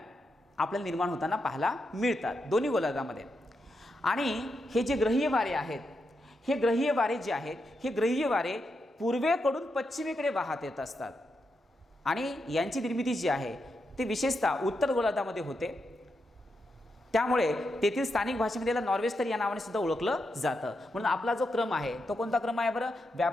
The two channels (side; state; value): both; normal; correlation 0.85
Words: आपल्याला निर्माण होताना पाहायला मिळतात दोन्ही गोलार्धामध्ये. आणि हे जे ग्रहीय वारे आहेत हे ग्रहीय वारे जे आहेत हे ग्रहीय वारे पूर्वेकडून पश्चिमेकडे वाहत येत असतात आणि यांची निर्मिती जी आहे ती विशेषतः उत्तर गोलार्धामध्ये होते. त्यामुळे तेथील स्थानिक भाषेमध्ये याला नॉर्वेस्टर या नावाने सुद्धा ओळखलं जातं. म्हणून आपला जो क्रम आहे तो कोणता क्रम आहे बरं?